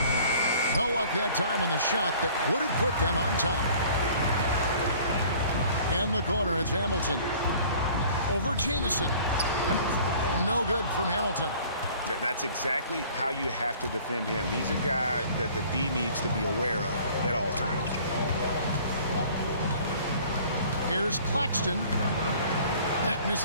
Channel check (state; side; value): inverted; both; correlation -0.51